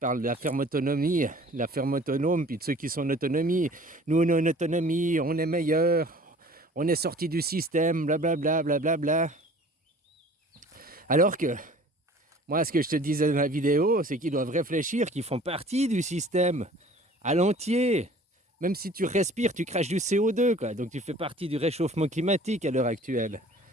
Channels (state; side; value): normal; both; correlation 0.48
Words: de la ferme autonomie, la ferme autonome, puis de ceux qui sont en autonomie. Nous, on a une autonomie, on est meilleurs, on est sorti du système, blablabla, blablabla. Alors que, moi, ce que je te disais dans la vidéo, c'est qu'ils doivent réfléchir qu'ils font partie du système, à l'entier. Même si tu respires, tu craches du CO2, quoi. Donc tu fais partie du réchauffement climatique à l'heure actuelle.